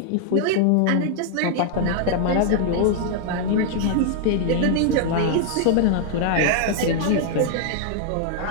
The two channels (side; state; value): both; different; correlation -0.01